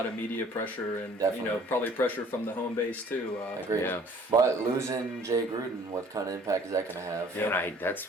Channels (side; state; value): both; normal; correlation 0.54